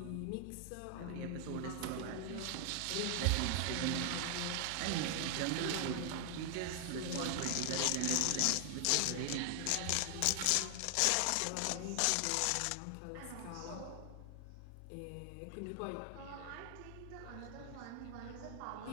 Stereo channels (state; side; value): different; both; correlation 0.00